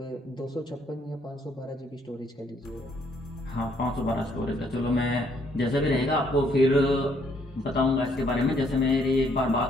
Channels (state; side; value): normal; both; correlation 0.68